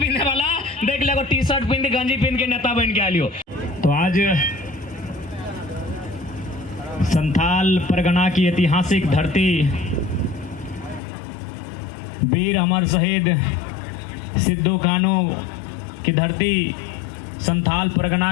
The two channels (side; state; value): right; drops out; at 11.0 s